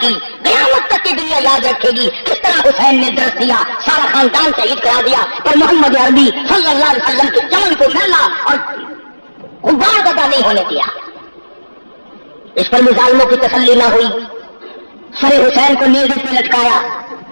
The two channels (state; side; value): inverted; both; correlation -1.00